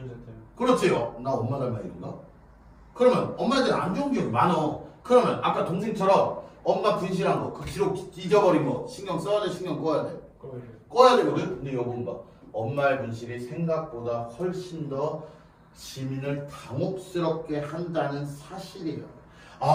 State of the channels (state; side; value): identical; both; correlation 1.00